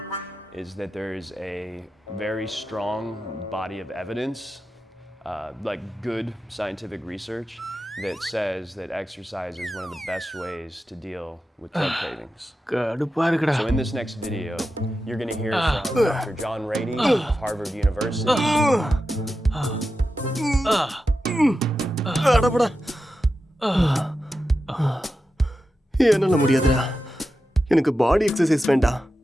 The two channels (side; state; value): both; normal; correlation 0.91